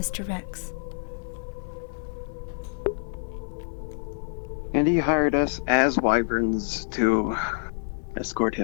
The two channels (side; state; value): right; silent; 60 dB below the other